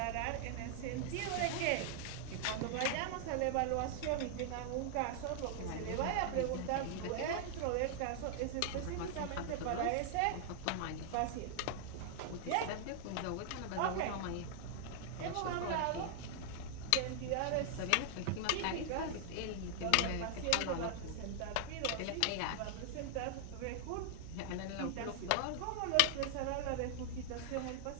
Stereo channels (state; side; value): different; both; correlation 0.00